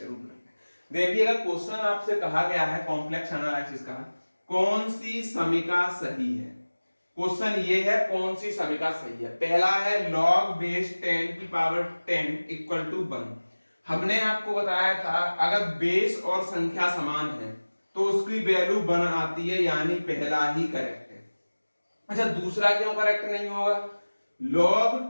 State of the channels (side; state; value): both; inverted; correlation -1.00